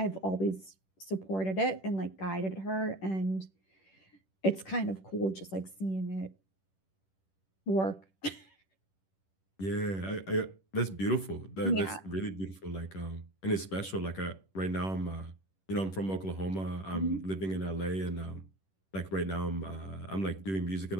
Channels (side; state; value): right; late; 10 ms